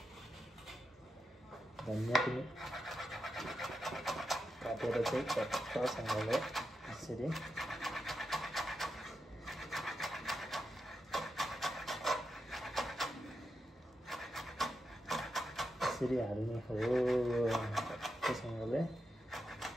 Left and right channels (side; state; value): both; normal; correlation 0.87